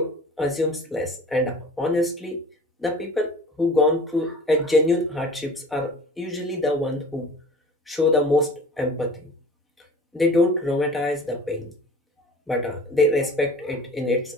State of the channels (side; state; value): both; normal; correlation 0.43